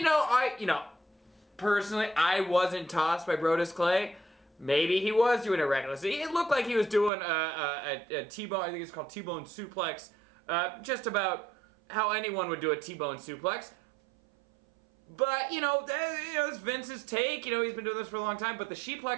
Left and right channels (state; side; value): drops out; left; at 7.1 s